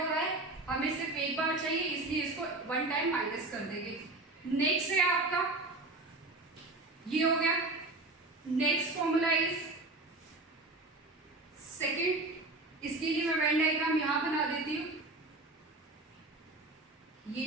रहा है, हमें सिर्फ एक बार चाहिए, इसलिए इसको वन टाइम माइनस कर देंगे। नेक्स्ट है आपका, ये हो गया। नेक्स्ट फॉर्मूला इज सेकंड, इसके लिए मैं वेन डायग्राम यहां बना देती हूं, ये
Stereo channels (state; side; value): quieter; left; 3.0 dB